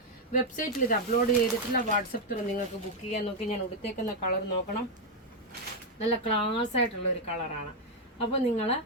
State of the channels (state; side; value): normal; both; correlation 0.01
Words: വെബ്സൈറ്റിൽ ഇത് അപ്ലോഡ് ചെയ്തിട്ടില്ല. വാട്സപ്പ് ത്രൂ നിങ്ങൾക്ക് ബുക്ക് ചെയ്യാൻ. നോക്കി, ഞാൻ ഉടുത്തേക്കുന്ന കളർ നോക്കണം, നല്ല ക്ലാസ് ആയിട്ടുള്ള ഒരു കളറാണ്. അപ്പോൾ നിങ്ങൾ